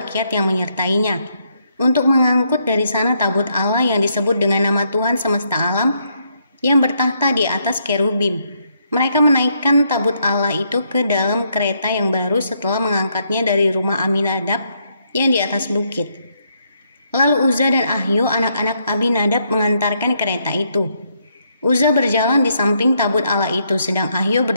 yang menyertainya, untuk mengangkut dari sana tabut Allah yang disebut dengan nama Tuhan semesta alam, yang bertahta di atas kerubim. Mereka menaikkan tabut Allah itu ke dalam kereta yang baru setelah mengangkatnya dari rumah Aminadab yang di atas bukit. Lalu Uzza dan Ahio, anak-anak Abinadab, mengantarkan kereta itu. Uzza berjalan di samping tabut Allah itu, sedang Ahio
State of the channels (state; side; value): inverted; both; correlation -0.75